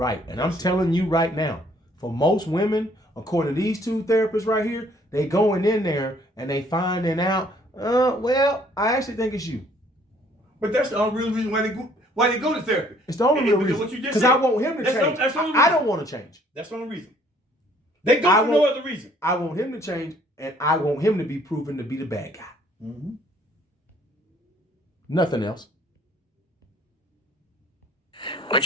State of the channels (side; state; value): both; normal; correlation 0.61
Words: And I'm telling you right now, for most women, according to these two therapists right here, they going in there and they finding out, well, I actually think it's you. But that's the only real reason why they go to therapy. It's the only real reason. Because I want him to change. I don't want to change. That's the only reason. They go for no other reason. I want him to change, and I want him to be proven to be the bad guy. Mm-hmm. Nothing else.